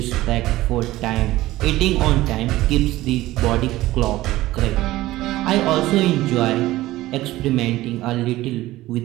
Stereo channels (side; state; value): left; quieter; 16.8 dB